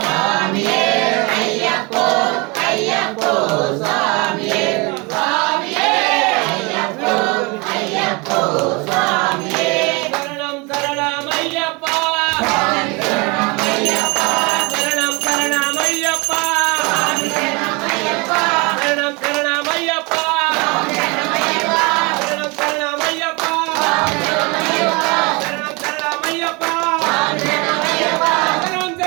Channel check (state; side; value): quieter; left; 28.1 dB